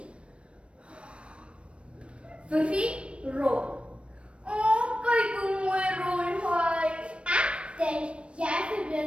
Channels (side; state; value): left; late; 0.060 ms